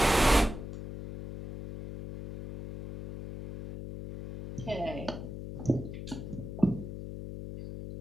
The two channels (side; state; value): left; noise; hum, 9 dB below the sound